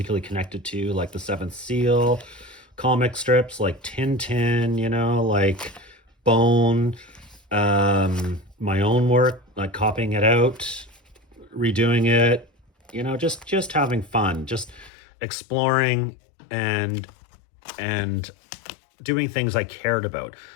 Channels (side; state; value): right; drops out; at 14.9 s